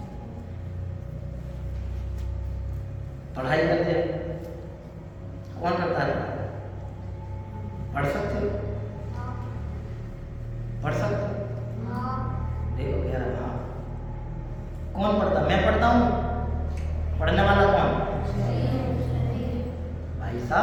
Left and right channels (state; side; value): identical; both; correlation 1.00